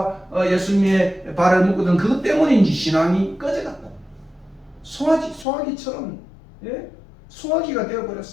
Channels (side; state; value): right; drops out; at 5.5 s